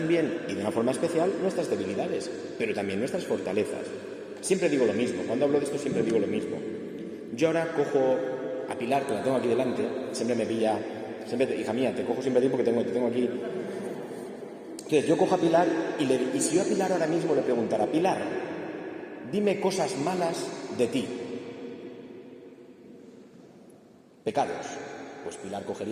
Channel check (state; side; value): identical; both; correlation 1.00